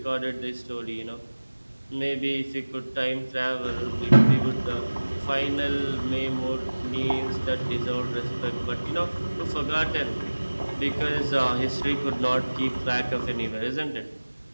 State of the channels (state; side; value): inverted; both; correlation -1.00